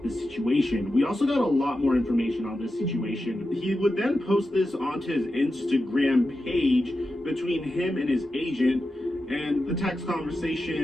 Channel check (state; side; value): normal; both; correlation 0.90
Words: this situation. We also got a lot more information on this situation. He would then post this onto his Instagram page between him and his agent, and the text